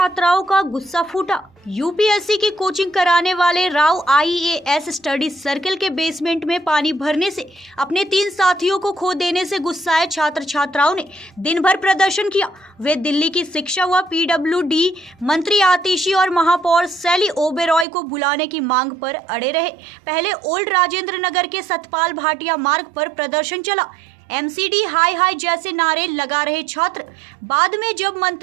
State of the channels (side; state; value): left; drops out; at 17.9 s